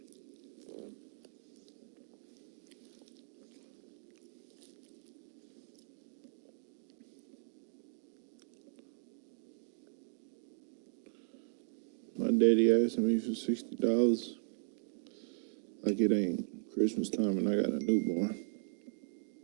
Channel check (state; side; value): silent; left; digital silence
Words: My daddy asking me for $60. Like it ain't Christmas time and I got a newborn.